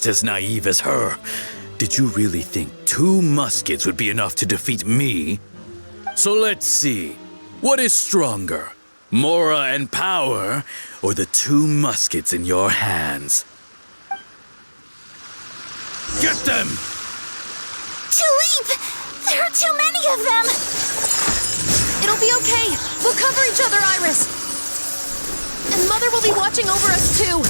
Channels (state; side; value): inverted; both; correlation -1.00